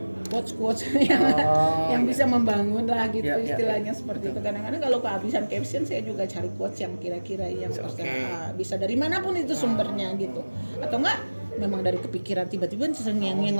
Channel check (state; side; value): inverted; both; correlation -1.00